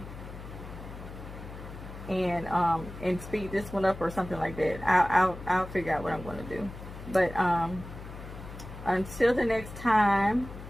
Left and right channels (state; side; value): noise; left; hum, 12 dB below the sound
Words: and speed this one up or something like that. I'll figure out what I'm going to do. But until the next time,